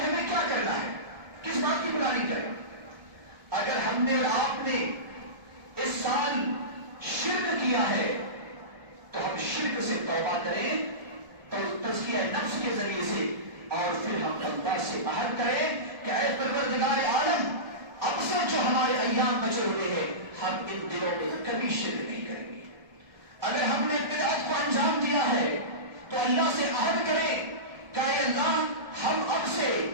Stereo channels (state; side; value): late; left; 1.3 ms